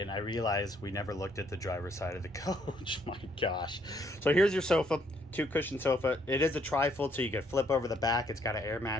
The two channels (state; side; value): normal; both; correlation 0.68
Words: I realized we never looked at the driver's side of the coach. My gosh. So here's your sofa, 2 cushion sofa. It is a trifold, so you can flip over the back. It's got an air